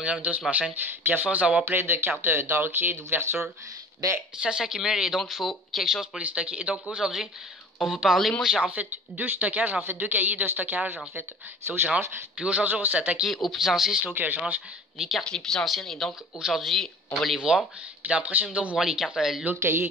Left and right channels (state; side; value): normal; both; correlation 0.43